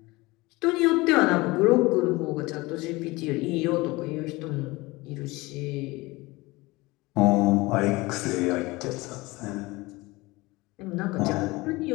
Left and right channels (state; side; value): quieter; right; 22.0 dB